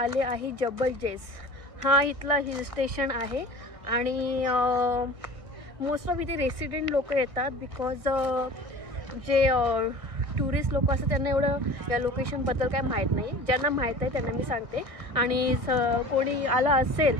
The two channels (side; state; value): left; late; 1.6 ms